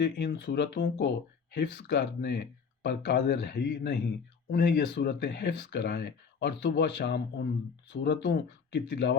ان صورتوں کو حفظ کرنے پر قادر ہی نہیں، انہیں یہ صورتیں حفظ کرائیں اور صبح شام ان صورتوں کی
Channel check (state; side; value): quieter; right; 5.9 dB